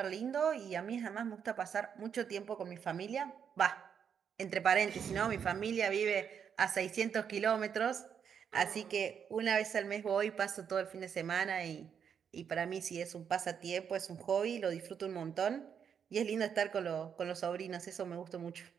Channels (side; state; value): left; quieter; 7.6 dB